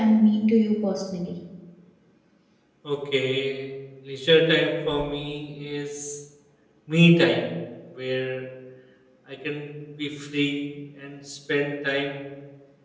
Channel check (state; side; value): identical; both; correlation 1.00